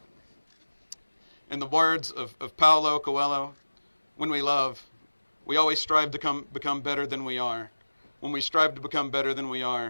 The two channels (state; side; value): inverted; both; correlation -1.00